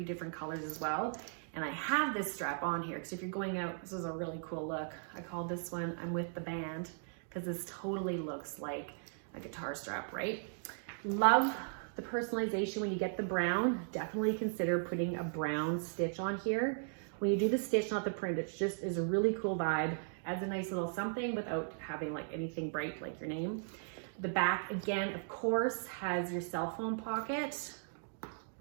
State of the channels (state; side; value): silent; left; digital silence